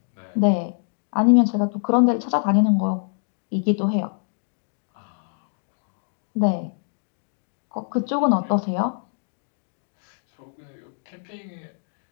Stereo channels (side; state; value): right; silent; 61 dB below the other